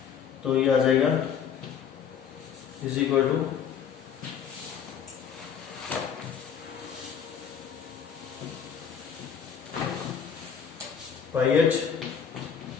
तो ये आ जाएगा is equal to pi H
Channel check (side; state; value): right; quieter; 7.5 dB